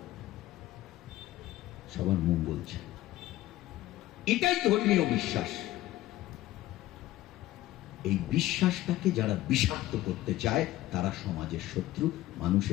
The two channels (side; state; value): right; quieter; 15.8 dB